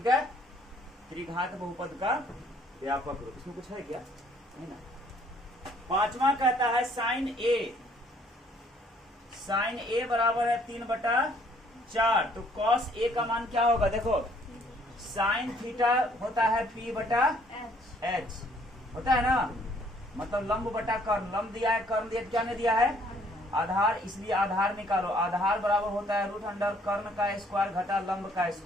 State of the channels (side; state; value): both; normal; correlation 0.63